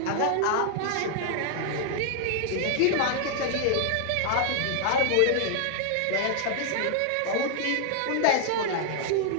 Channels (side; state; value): both; different; correlation -0.01